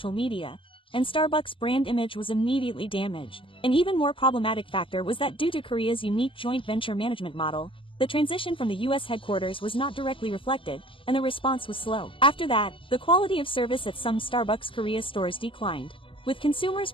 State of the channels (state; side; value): late; right; 0.25 ms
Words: media, and Starbucks' brand image was immediately damaged. An even more problematic factor was that due to Korea's unique joint venture management model, the transition from the US headquarters was not directly reflected, and the response was slow. After that, the quality of service at some Starbucks Korea stores declined, with consumers